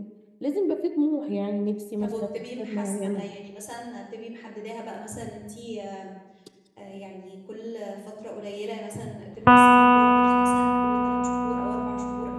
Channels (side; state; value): both; identical; correlation 1.00